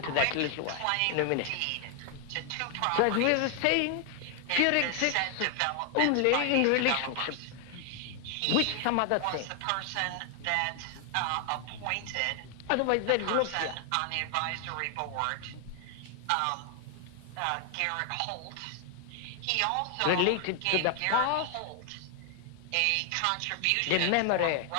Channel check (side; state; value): both; different; correlation 0.00